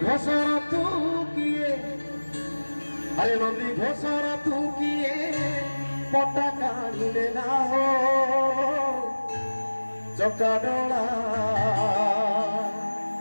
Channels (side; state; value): both; inverted; correlation -1.00